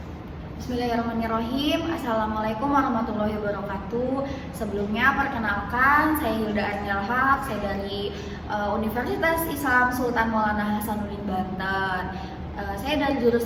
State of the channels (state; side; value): identical; both; correlation 1.00